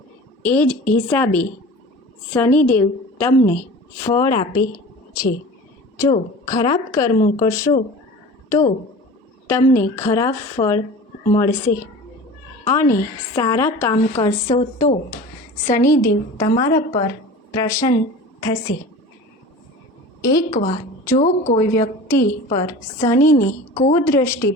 એ જ હિસાબે શનિદેવ તમને ફળ આપે છે. જો ખરાબ કર્મો કરશો તો તમને ખરાબ ફળ મળશે અને સારા કામ કરશો તો શનિદેવ તમારા પર પ્રસન્ન થશે. એકવાર જો કોઈ વ્યક્તિ પર શનિની કુદૃષ્ટિ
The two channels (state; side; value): normal; both; correlation 0.37